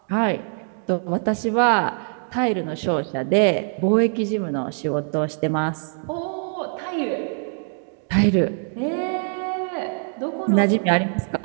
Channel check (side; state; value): left; silent; 63 dB below the other